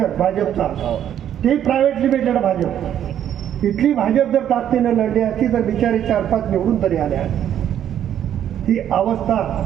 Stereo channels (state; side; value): quieter; left; 10.2 dB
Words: भाजपचा, ते प्रायव्हेट लिमिटेड भाजप. इथली भाजप जर ताकदीनं लढली असती तर बिचारी 4-5 निवडून तरी आल्या. ही अवस्था